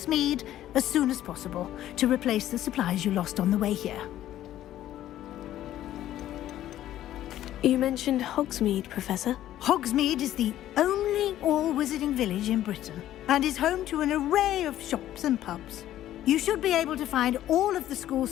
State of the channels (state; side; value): quieter; right; 12.9 dB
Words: as soon as possible to replace the supplies you lost on the way here. You mentioned Hogsmeade, Professor. Hogsmeade is the only all-wizarding village in Britain and is home to an array of shops and pubs. You should be able to find all of the school